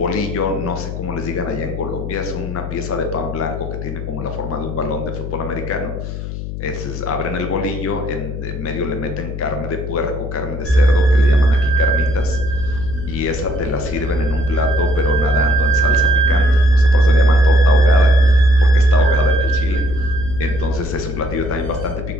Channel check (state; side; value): noise; left; hum, 7 dB below the sound